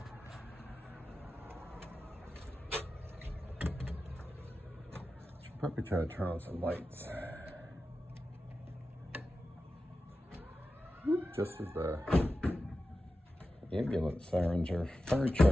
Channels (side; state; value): both; normal; correlation 0.93